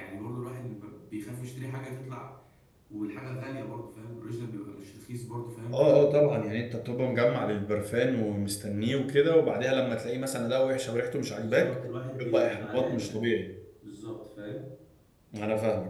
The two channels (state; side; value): identical; both; correlation 1.00